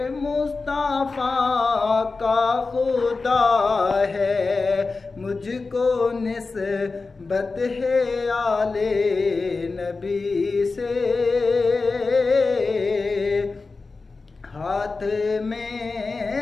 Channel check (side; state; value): right; quieter; 4.0 dB